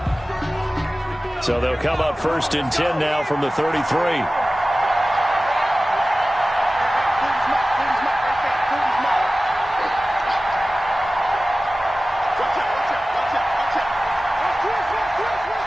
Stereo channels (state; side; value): normal; both; correlation 0.97